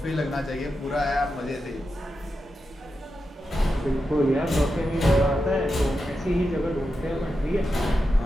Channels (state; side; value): normal; both; correlation 0.88